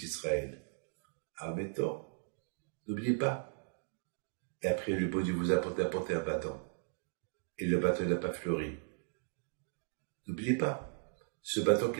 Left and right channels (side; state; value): left; silent; digital silence